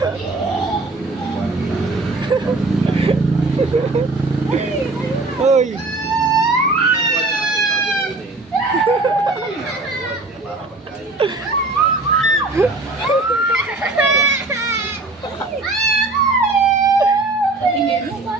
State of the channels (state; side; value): quieter; left; 3.3 dB